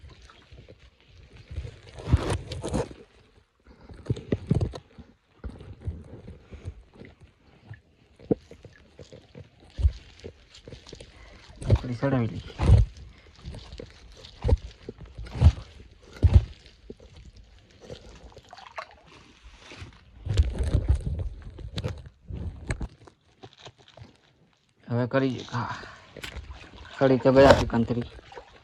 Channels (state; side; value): identical; both; correlation 1.00